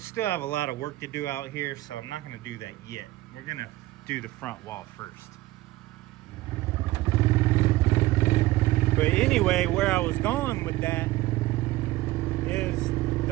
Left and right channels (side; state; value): left; quieter; 17.6 dB